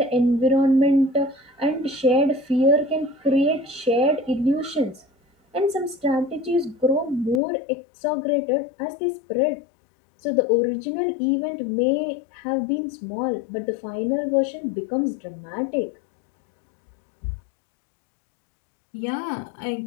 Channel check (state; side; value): drops out; right; at 7.4 s